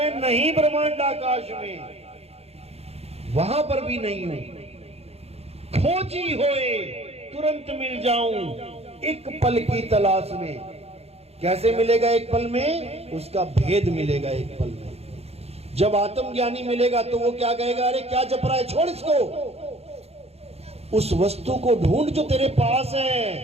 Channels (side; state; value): left; late; 0.30 ms